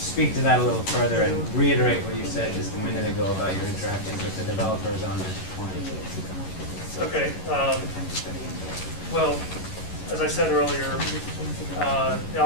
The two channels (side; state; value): right; late; 11 ms